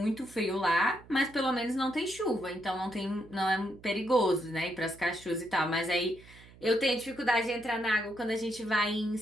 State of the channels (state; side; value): noise; right; hum, 22 dB below the sound